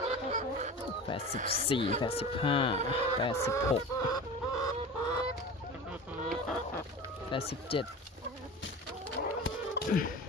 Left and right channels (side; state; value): both; normal; correlation 0.34